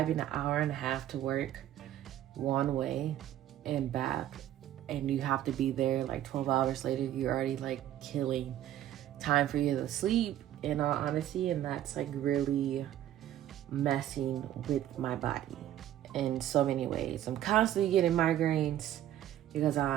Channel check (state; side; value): quieter; left; 12.1 dB